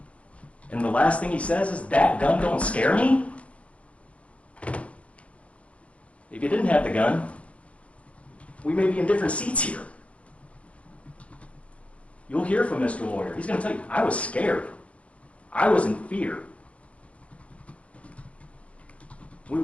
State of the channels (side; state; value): right; late; 0.063 ms